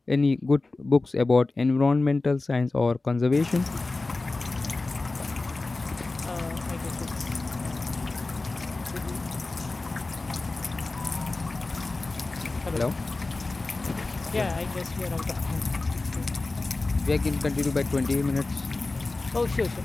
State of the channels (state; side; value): quieter; right; 3.4 dB